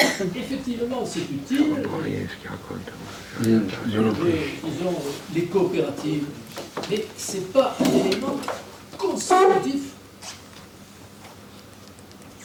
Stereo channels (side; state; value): both; identical; correlation 1.00